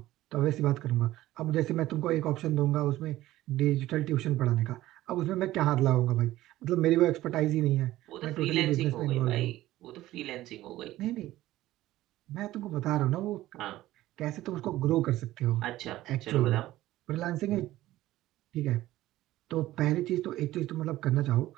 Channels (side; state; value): left; quieter; 15.6 dB